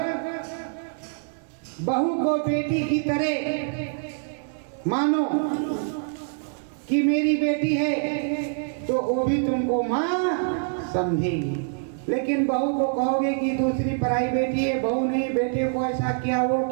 बहू को बेटी की तरह मानो कि मेरी बेटी है, तो वो भी तुमको माँ समझेगी। लेकिन बहू को कहोगे कि दूसरी पराई बेटी है, बहू नहीं, बेटे को ऐसा किया, वो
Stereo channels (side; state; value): left; silent; 62 dB below the other